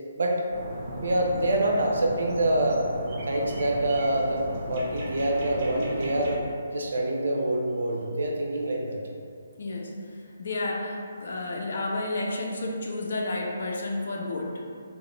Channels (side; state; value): both; inverted; correlation -0.76